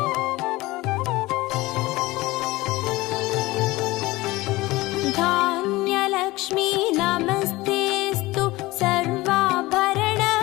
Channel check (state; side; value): quieter; right; 19.9 dB